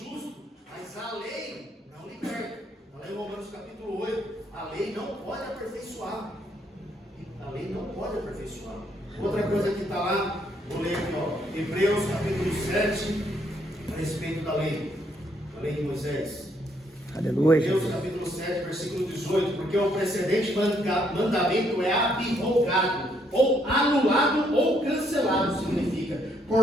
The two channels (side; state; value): both; normal; correlation 0.71